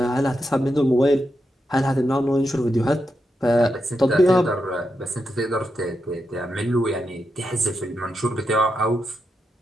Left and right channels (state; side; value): normal; both; correlation 0.85